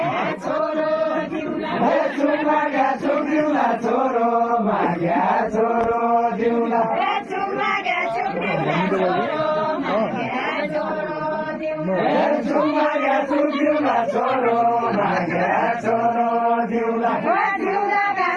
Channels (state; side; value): identical; both; correlation 1.00